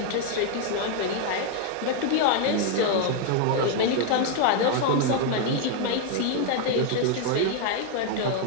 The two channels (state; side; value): different; both; correlation 0.01